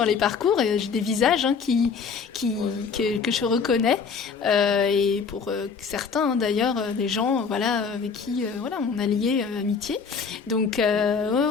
les parcours, et j'ai des visages que je reconnais, et pour certains d'ailleurs, des gens avec qui on a lié amitié. Donc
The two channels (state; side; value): quieter; right; 5.6 dB